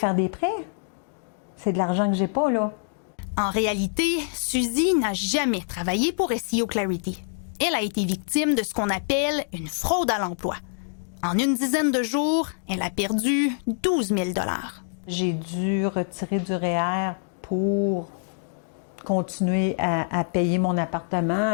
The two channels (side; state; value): right; silent; digital silence